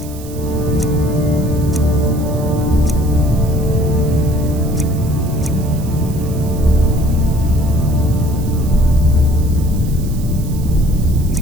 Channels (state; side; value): noise; right; hiss, 18 dB below the sound